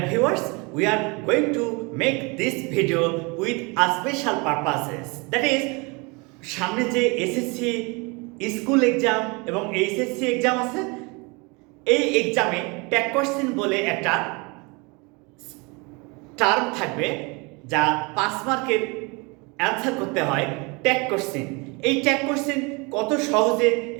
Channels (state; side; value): quieter; left; 28.6 dB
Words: viewers, we are going to make this video with a special purposes. That is, সামনে যে SSC school exam এবং HSC exam আছে, এই এক্সামে tag question বলে একটা term থাকবে যা 5 মার্কের অ্যান্সার করতে হয় ট্যাগ কোশ্চেন। এই ট্যাগ কোশ্চেন কত সহজে